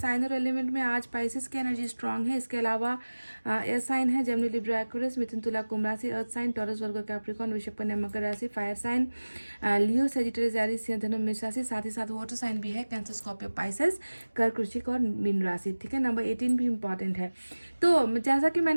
और एलिमेंट में आज स्पाइसेस की एनर्जी स्ट्रांग है। इसके अलावा एयर साइन है जेमिनी लिब्रा एक्वेरियस, मिथुन तुला कुंभ राशि, earth sign Taurus Virgo Capricorn, वृषभ कन्या मकर राशि, fire sign Leo Sagittarius Aries सिंह धनु मेष राशि, साथ ही साथ वाटर साइन भी है कैंसर स्कॉर्पियो पाइसेस कर्क वृश्चिक और मीन राशि। ठीक है, नंबर 18 भी इंपॉर्टेंट है। तो जैसा कि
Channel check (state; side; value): inverted; both; correlation -1.00